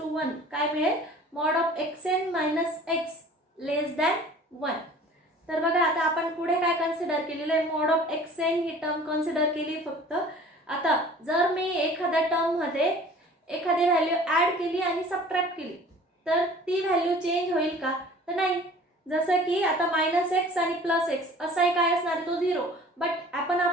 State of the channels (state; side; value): normal; both; correlation 0.47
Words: 1 काय मिळेल mod of X N minus X less than 1. तर बघा आता आपण पुढे काय कन्सिडर केलेलं आहे मॉड ऑफ एक्स एन ही टर्म कन्सिडर केली फक्त. आता जर मी एखाद्या टर्म मध्ये एखादी व्हॅल्यू ऍड केली आणि सबट्रॅक्ट केली तर ती व्हॅल्यू चेंज होईल का तर नाही. जसं की आता मायनस एक्स आणि प्लस एक्स असाही काय असणार तो 0 बट आपण